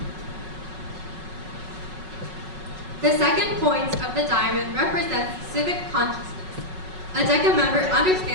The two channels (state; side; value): late; left; 5.4 ms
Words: The second point of the diamond represents civic consciousness. A DECA member